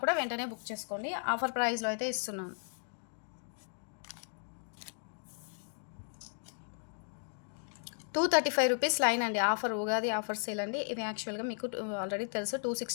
కూడా వెంటనే బుక్ చేసుకోండి. ఆఫర్ ప్రైస్లో అయితే ఇస్తున్నాను. ₹235 లైన్ అండి. ఆఫర్ ఉగాది ఆఫర్ సేల్ అండి. ఇది యాక్చువల్గా మీకు ఆల్రెడీ తెలుసు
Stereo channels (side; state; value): right; silent; 54 dB below the other